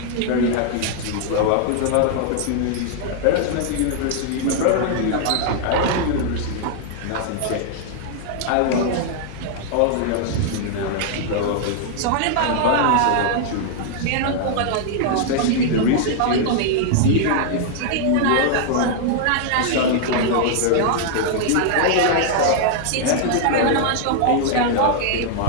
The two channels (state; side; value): different; both; correlation 0.00